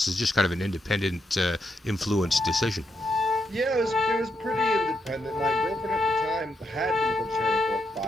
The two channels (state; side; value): normal; both; correlation 0.81